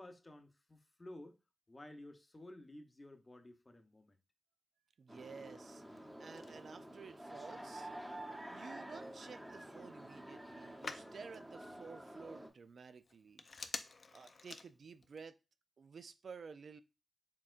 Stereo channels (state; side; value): normal; both; correlation 0.91